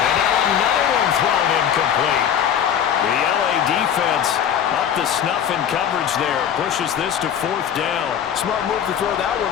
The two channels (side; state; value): right; quieter; 9.0 dB